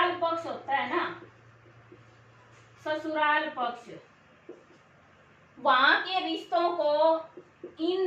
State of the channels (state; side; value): identical; both; correlation 1.00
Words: पक्ष होता है ना, ससुराल पक्ष, वहां के रिश्तों को